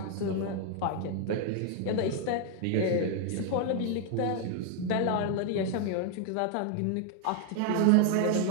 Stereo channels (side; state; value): both; different; correlation 0.01